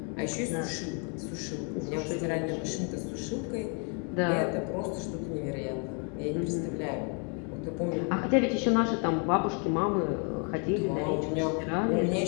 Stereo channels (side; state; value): right; quieter; 37.9 dB